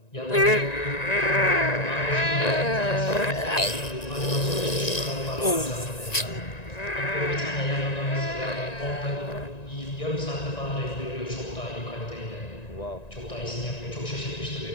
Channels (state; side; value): late; right; 1.9 ms